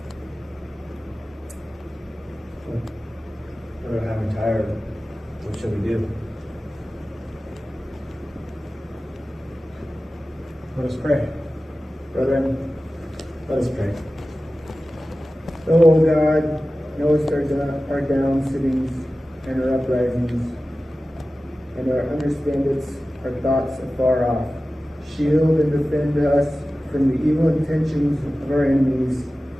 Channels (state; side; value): normal; both; correlation 0.95